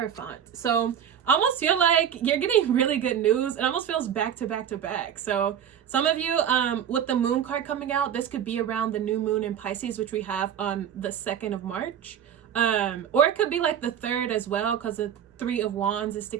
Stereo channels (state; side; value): quieter; left; 9.1 dB